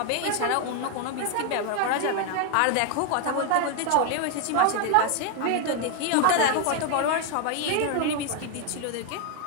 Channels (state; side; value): different; both; correlation 0.00